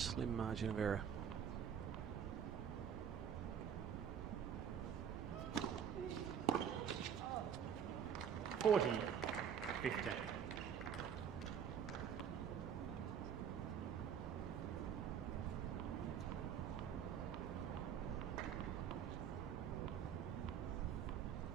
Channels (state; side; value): quieter; left; 8.2 dB